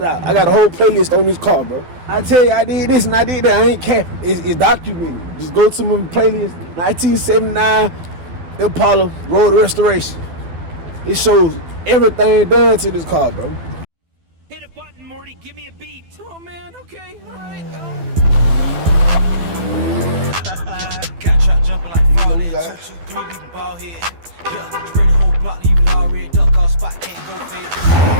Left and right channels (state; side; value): late; left; 12 ms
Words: out. I got a whole playlist on this car, bro. I tell you, I did this and I did that. I ain't capping. It's documented. Just go to my playlist, 1979 Impala Road Restoration. It shows everything done to this car, bro. Hit a button, Morty. Give me a beat. Oh man, okay, all right. Got trap jumping like fraud. 2, 2, 3, leaving ball head. Yeah, spray the whole block, leave it all red. Duck off spot, can't go fit.